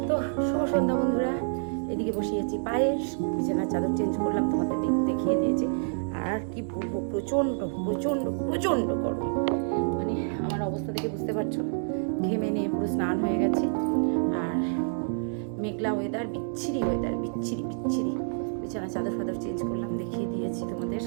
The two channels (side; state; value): left; silent; 59 dB below the other